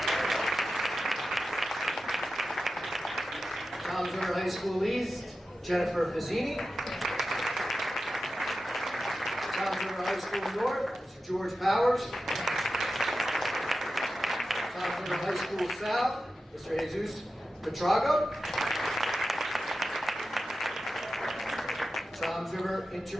Toms River High School East, Jennifer Fazzini. Toms River High School North, Mr. George Powers. Toms River High School South, Mr. Jesus Petrago. Toms River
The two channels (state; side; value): normal; both; correlation 0.92